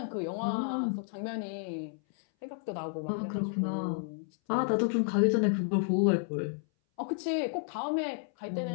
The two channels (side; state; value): right; silent; 57 dB below the other